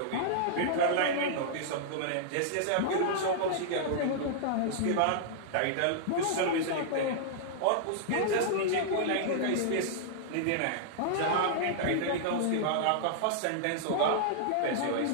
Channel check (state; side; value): different; both; correlation -0.01